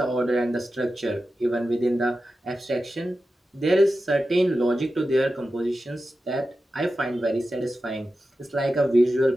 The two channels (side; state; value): both; normal; correlation 0.92